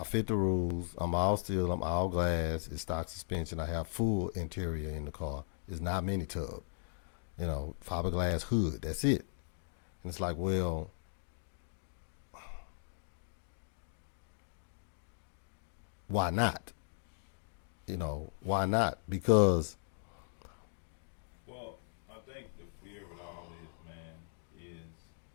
I fit the rules. I'm all steel. I'm all glass. It's stock suspension. I have full interior in the car. It's not mini tub. You know, fiberglass hood. That's it. And it's like, well, why not? You know, why not? Because Well, I think the fear with all this, man, is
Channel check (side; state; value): right; silent; digital silence